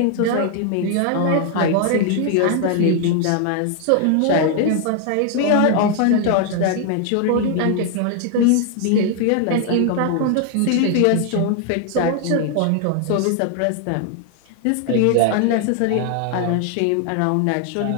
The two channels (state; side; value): different; both; correlation 0.00